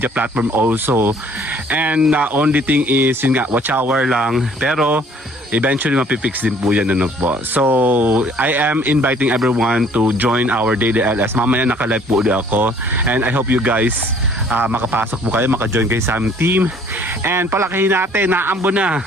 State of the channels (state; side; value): normal; both; correlation 0.57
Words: platform also. And only thing is, yun nga, watch hour lang. Pero eventually mapipix din po yan, po. So, I am inviting everyone to join our daily LS. Mamaya naka-live po ulit ako. And I hope you guys makapasok po kayo, maka-join kayo sa aming team. And palakihin natin, naambo na